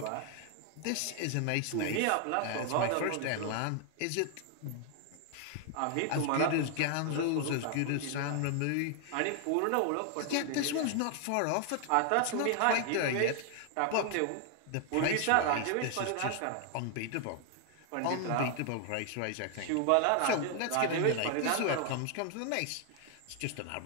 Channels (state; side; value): different; both; correlation 0.00